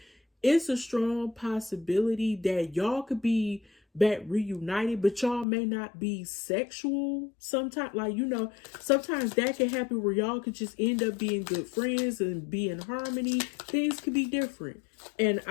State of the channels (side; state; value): right; drops out; at 5.5 s